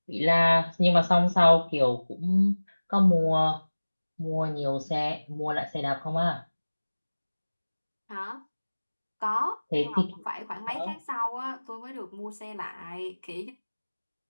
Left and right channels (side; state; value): both; inverted; correlation -1.00